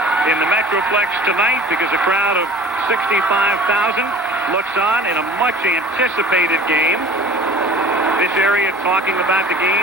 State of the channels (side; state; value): both; normal; correlation 0.44